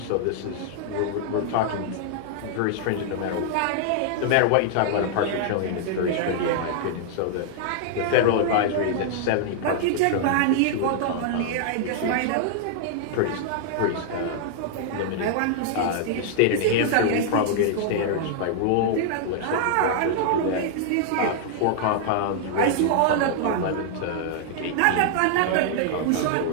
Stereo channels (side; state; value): both; different; correlation -0.01